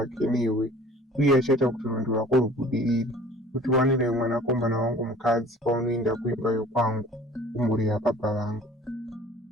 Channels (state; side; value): normal; both; correlation 0.48